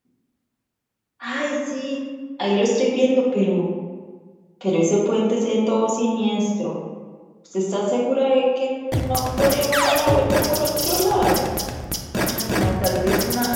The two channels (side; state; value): both; identical; correlation 1.00